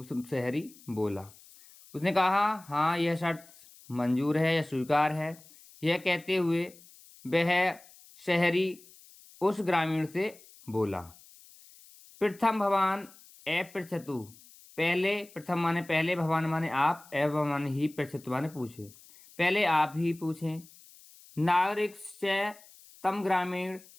शहरी बोला। उसने कहा हाँ यह शर्त मंजूर है या स्वीकार है। यह कहते हुए वह शहरी उस ग्रामीण से बोला, प्रथम भवान अपृच्छतु, पहले, प्रथम माने पहले, भवान माने आप, एवं माने ही, पृच्छतु माने पूछे, पहले आप ही पूछें। नागरिक से तम ग्रामीण,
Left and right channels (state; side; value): noise; left; hiss, 23 dB below the sound